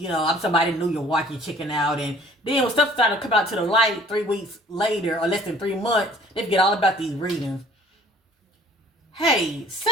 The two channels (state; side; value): normal; both; correlation 0.54